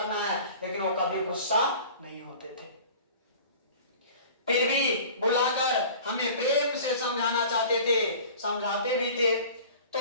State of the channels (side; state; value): both; inverted; correlation -0.43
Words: है, लेकिन वो कभी गुस्सा नहीं होते थे। फिर भी बुलाकर हमें प्रेम से समझाना चाहते थे, समझाते भी थे।